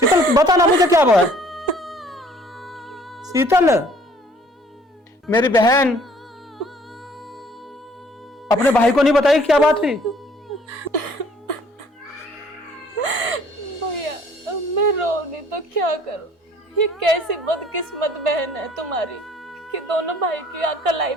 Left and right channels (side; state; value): both; normal; correlation 0.57